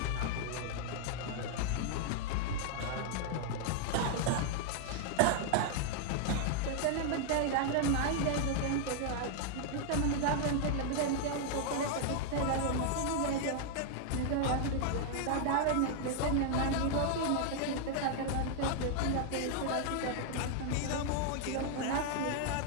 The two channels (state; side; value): different; both; correlation 0.00